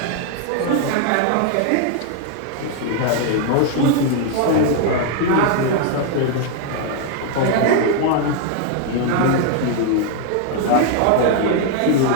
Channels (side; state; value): both; different; correlation 0.00